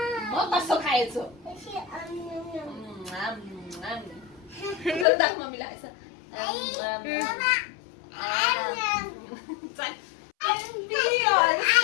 मग कसं खायचं? जरा दाख मम्मीला असं। चल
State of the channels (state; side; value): drops out; right; at 5.1 s